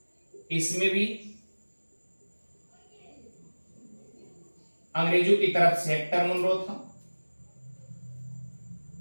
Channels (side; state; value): both; inverted; correlation -1.00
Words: इसमें भी अंग्रेजों की तरफ से हेक्टर मुनरो था।